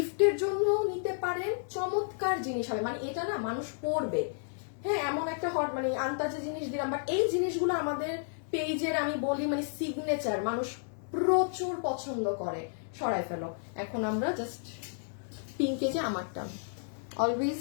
জন্য নিতে পারেন, চমৎকার জিনিস হবে, মানে এটা না মানুষ পরবে, হ্যাঁ এমন একটা হট মানে আন্তাজে জিনিস দিলাম, বাট এই জিনিসগুলো আমাদের পেজের আমি বলি মানে সিগনেচার, মানুষ প্রচুর পছন্দ করে। সরাই ফেলো, এখন আমরা জাস্ট পিঙ্কে যে আমারটা অলওয়েজ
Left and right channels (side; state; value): right; silent; digital silence